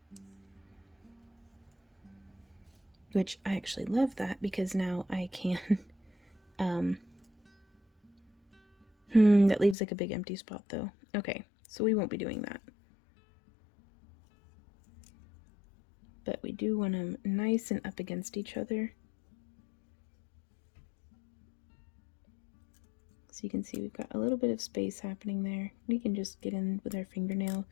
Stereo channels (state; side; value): drops out; right; at 9.8 s